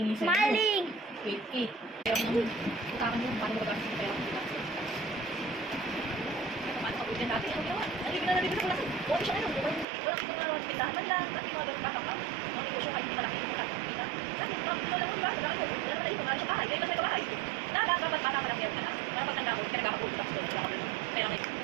sa'yo. Maling! Wait. Kaya mo nung utakan mo, paano mo gagawin sa pera mo? Paano ka pwede natin? Ano ginawa? Nalibig na sa kulasan. Buwan siya ngayon. Walang mga pindahan man lang. At yung mga ganun patang mga negosyo kahit hindi malaki yung kita. Dahil, ito lang mo, diba? Wala na tayo. Wala siya bahay. Dahil kasi ito bahay. Dapat bata malaki ako ka na. Para pag tanda ko, pinagkakapulot ako doon. Wala ka doon. Kaya may,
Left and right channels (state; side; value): drops out; left; at 9.9 s